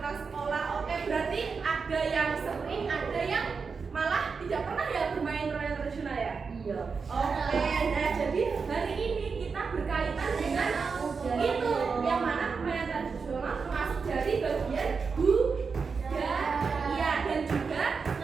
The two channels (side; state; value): left; quieter; 5.2 dB